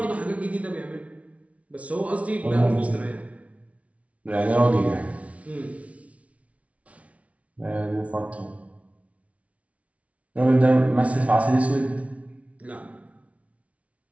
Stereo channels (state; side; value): late; left; 0.065 ms